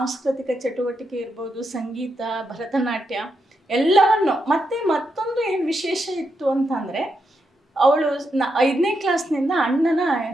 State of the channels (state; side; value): normal; both; correlation 0.83